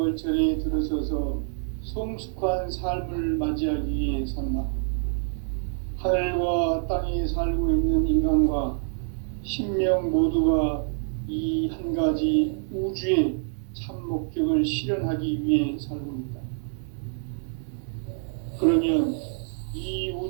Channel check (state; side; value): silent; left; digital silence